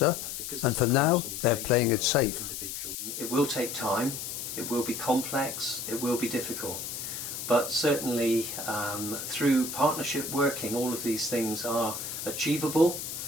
and for now they're playing it safe. It will take time, it will be complex, it will be difficult. But certainly through partnership working, all of these things are achievable,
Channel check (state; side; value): noise; left; hiss, 6 dB below the sound